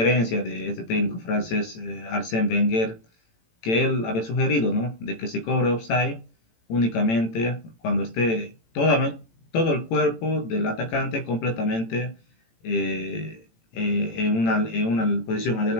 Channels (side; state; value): right; late; 18 ms